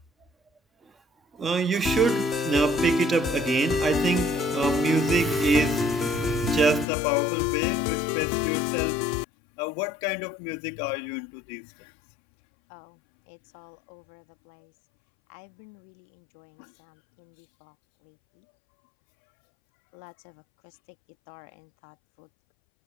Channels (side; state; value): right; drops out; at 6.9 s